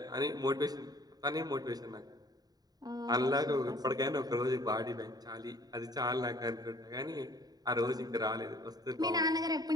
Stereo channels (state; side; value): late; left; 0.19 ms